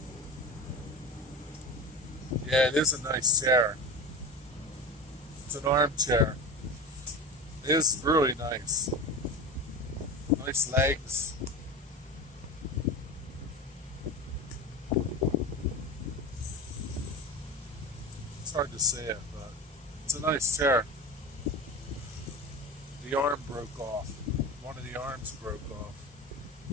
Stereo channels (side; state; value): both; normal; correlation 0.27